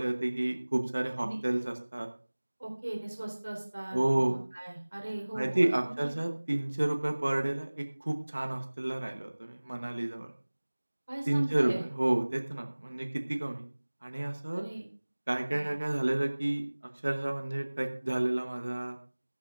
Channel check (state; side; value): inverted; both; correlation -1.00